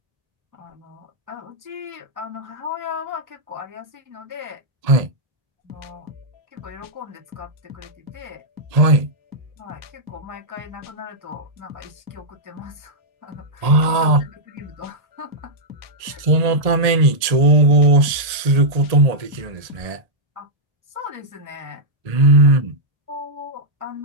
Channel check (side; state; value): left; late; 1.7 ms